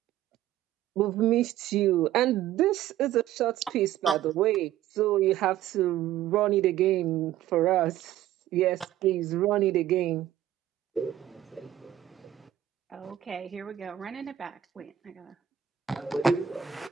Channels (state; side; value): quieter; left; 12.0 dB